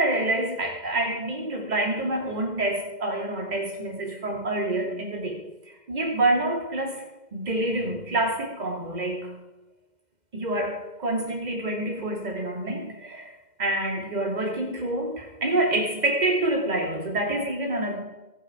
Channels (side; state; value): left; late; 2.0 ms